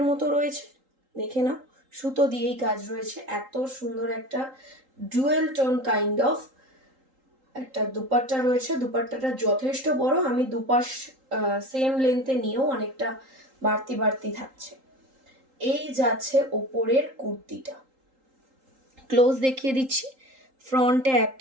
মতো রয়েছে, দেখে নাও। সুতো দিয়েই কাজ রয়েছে, এত সুন্দর একটা ডুয়েল টোন কাইন্ড অফ একটা দুপাট্টা রয়েছে। দুপাট্টাটা যথেষ্ট বড়, আমি দুপাশ সেম লেন্থে নিয়েও অনেকটা বাড়তি বাড়তি থাকছে। এই যাচ্ছে ওপরের কুর্তিটা, ক্লোজ দেখিয়ে দিচ্ছি। ফ্রন্টে এত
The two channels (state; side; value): late; left; 3.8 ms